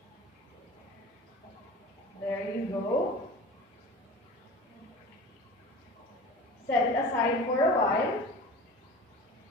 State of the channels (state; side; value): normal; both; correlation 0.37